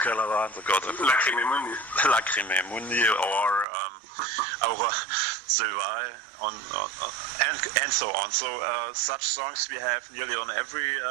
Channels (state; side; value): drops out; left; at 3.7 s